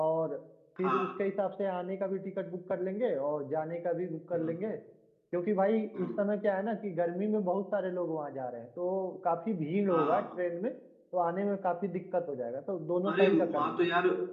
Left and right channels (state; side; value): identical; both; correlation 1.00